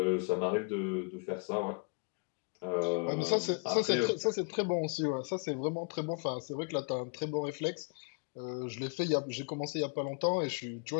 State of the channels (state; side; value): quieter; right; 36.3 dB